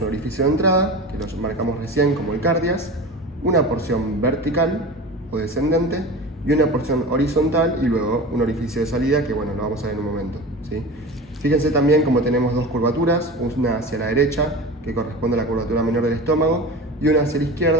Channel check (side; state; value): both; normal; correlation 0.32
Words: orificio de entrada, que lo marcamos recién como el cardias, una porción vertical o descendente y una porción horizontal y luego un orificio de salida que bueno, lo vamos a ver en un momento, ¿sí? Fíjense también como tenemos dos curvaturas, una hacia la derecha que corresponde a la curvatura menor del estómago y una hacia la